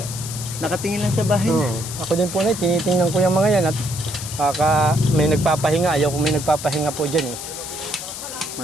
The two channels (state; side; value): noise; left; hiss, 9 dB below the sound